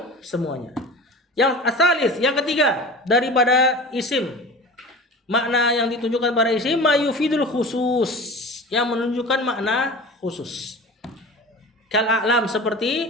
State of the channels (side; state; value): both; normal; correlation 0.36